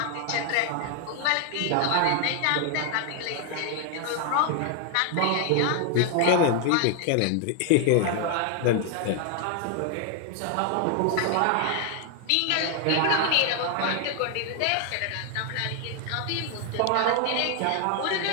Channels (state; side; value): different; both; correlation 0.00